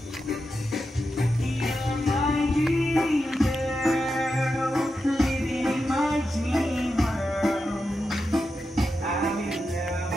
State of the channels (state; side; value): normal; both; correlation 0.89